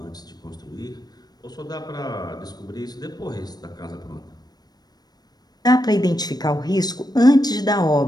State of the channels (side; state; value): right; late; 0.19 ms